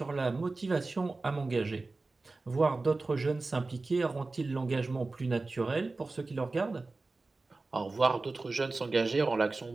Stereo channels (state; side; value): quieter; left; 3.5 dB